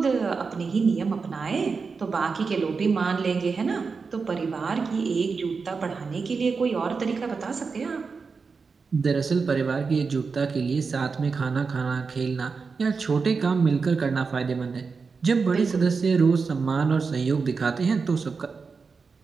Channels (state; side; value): quieter; left; 4.9 dB